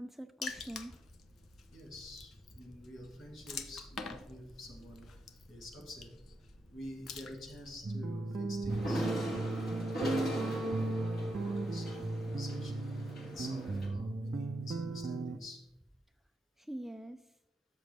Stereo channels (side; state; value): both; normal; correlation 0.84